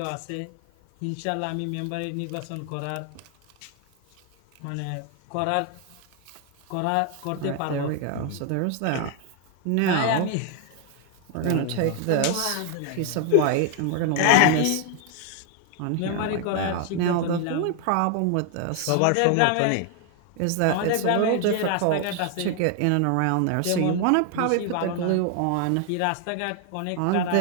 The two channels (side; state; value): both; different; correlation 0.00